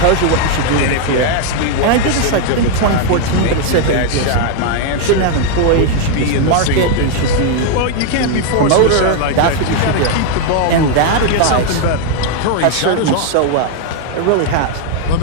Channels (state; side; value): different; both; correlation 0.00